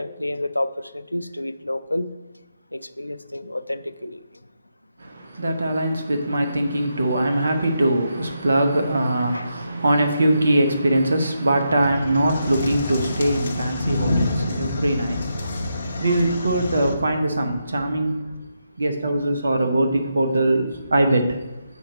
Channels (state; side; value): inverted; both; correlation -0.84